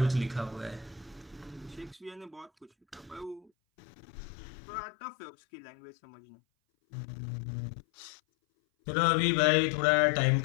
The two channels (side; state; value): right; drops out; at 3.5 s